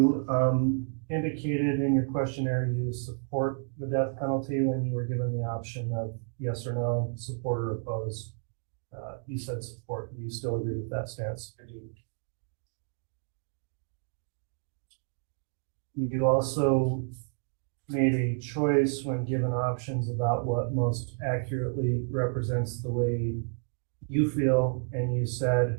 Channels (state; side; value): silent; left; 56 dB below the other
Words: indicated in your questionnaire you support the death penalty when you were given the option of yes or no, support or oppose. You said support. Do you still agree with that stance? I do. You also made a choice when given options about what most accurately represents the way you feel, and you said